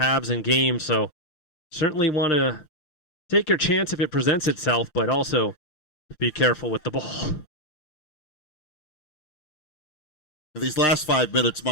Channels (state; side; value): late; right; 6.5 ms